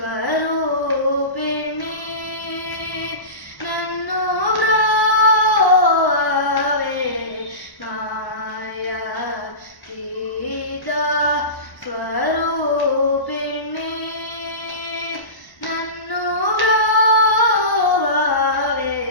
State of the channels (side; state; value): right; late; 1.1 ms